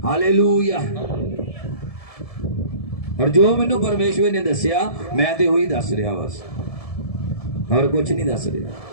ਹਾਲੇਲੂਇਆ। ਔਰ ਜੋ ਮੈਨੂੰ ਪਰਮੇਸ਼ਵਰ ਨੇ ਦੱਸਿਆ ਮੈਂ ਤੇ ਉਹੀ ਦੱਸ ਰਿਹਾ ਬਸ, और कुछ नहीं दस रहा।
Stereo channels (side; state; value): right; late; 1.7 ms